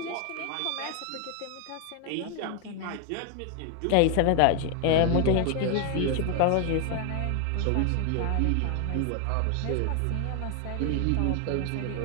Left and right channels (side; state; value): both; different; correlation 0.00